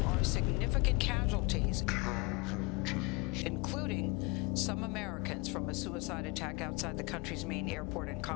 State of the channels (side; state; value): right; quieter; 26.6 dB